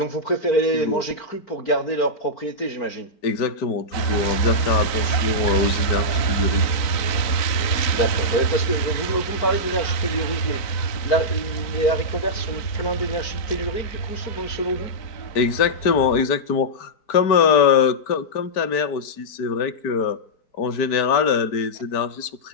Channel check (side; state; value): right; late; 4.6 ms